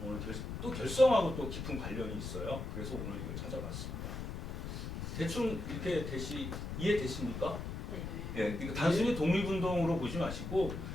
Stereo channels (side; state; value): left; noise; rumble, 5 dB below the sound